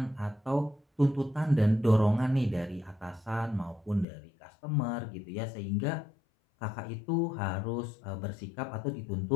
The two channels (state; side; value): drops out; right; at 4.0 s